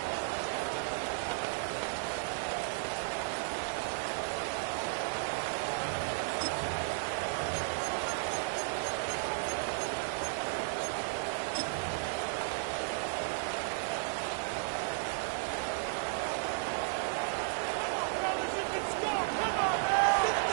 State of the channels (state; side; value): silent; left; digital silence